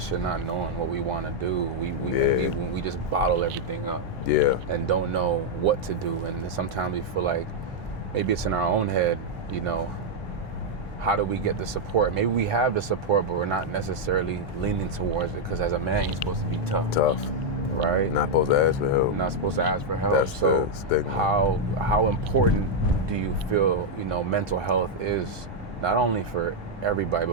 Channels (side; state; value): both; normal; correlation -0.01